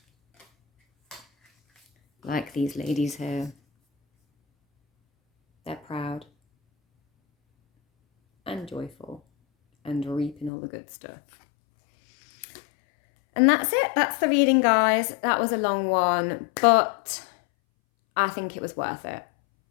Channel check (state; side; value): drops out; right; at 10.5 s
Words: Like these ladies here. They're proud and joyful and reaping all the good stuff. And that's it. That's the reading, guys. That was a long one, but I think it was worth it.